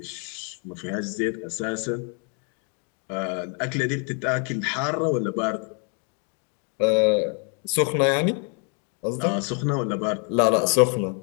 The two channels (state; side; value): quieter; right; 39.7 dB